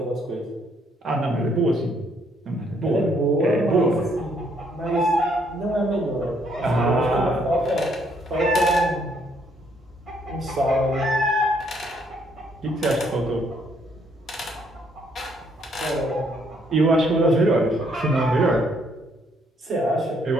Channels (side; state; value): both; normal; correlation 0.69